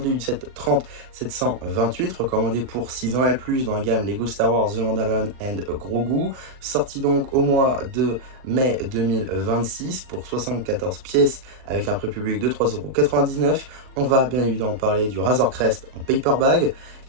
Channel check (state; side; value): late; left; 39 ms